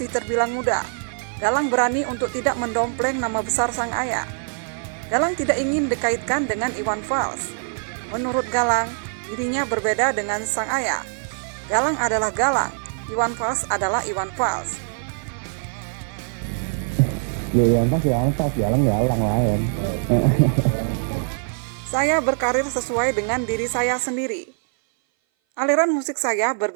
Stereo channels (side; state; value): left; silent; 58 dB below the other